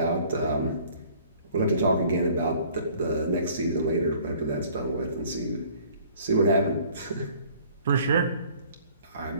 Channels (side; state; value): both; inverted; correlation -0.54